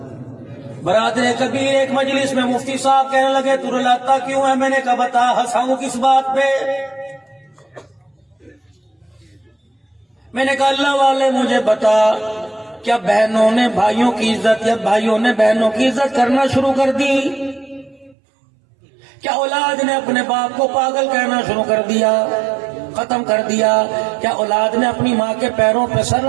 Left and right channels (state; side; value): drops out; left; at 18.2 s